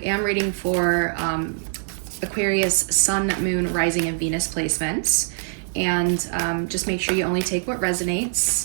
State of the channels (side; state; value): left; silent; digital silence